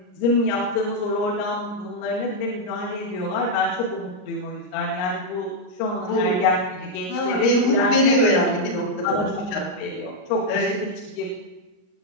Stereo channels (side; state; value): right; late; 38 ms